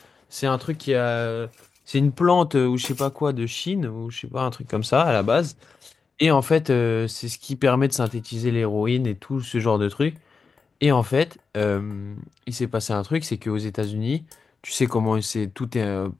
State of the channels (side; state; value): right; quieter; 5.0 dB